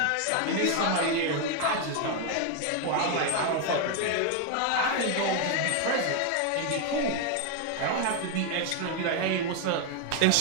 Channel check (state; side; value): different; both; correlation 0.01